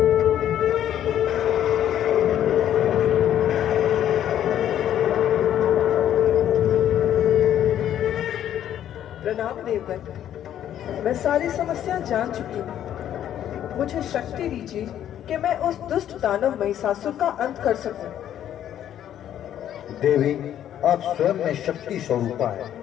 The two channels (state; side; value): quieter; right; 10.8 dB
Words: प्रणाम देवगण, मैं सारी समस्या जान चुकी हूँ। मुझे शक्ति दीजिए कि मैं उस दुष्ट दानव महिषासुर का अंत कर सकूं। देवी आप स्वयं में शक्ति स्वरूपा है,